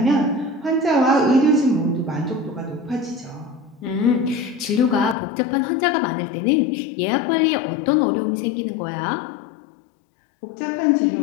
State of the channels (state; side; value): drops out; right; at 5.2 s